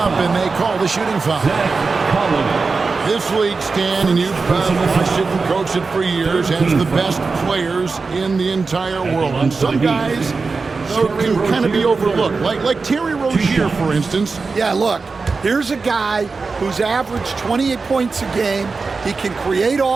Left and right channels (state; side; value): quieter; left; 4.3 dB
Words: and they call the shooting foul. This league, Stan, and you've watched it and coached it for years, has the best players in the entire world. And some guys can kind of be overlooked, like Terry Rozier, for instance. Yeah, look, Here's a guy who's averaged 28 points a game. He can create